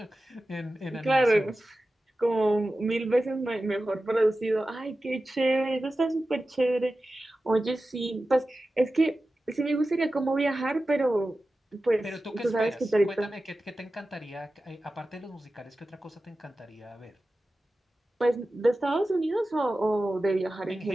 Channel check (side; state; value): both; normal; correlation 0.94